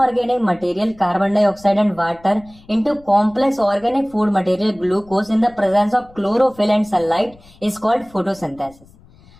material carbon dioxide and water into complex organic food material glucose in the presence of chlorophyll and sunlight is called photosynthesis.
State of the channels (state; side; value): noise; left; rumble, 26 dB below the sound